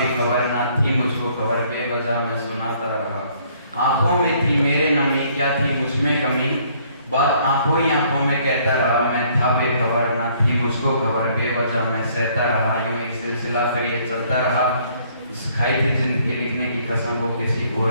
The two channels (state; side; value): inverted; both; correlation -0.63